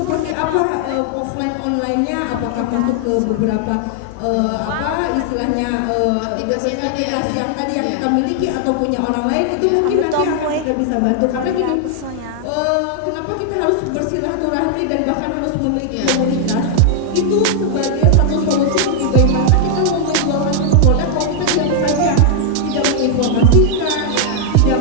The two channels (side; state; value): both; different; correlation 0.00